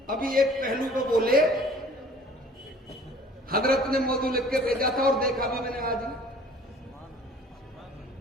ابھی ایک پہلو کو بولے, حضرت نے موضوع لکھ کے بھیجا تھا اور دیکھا بھی میں نے آج,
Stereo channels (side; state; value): both; normal; correlation 0.50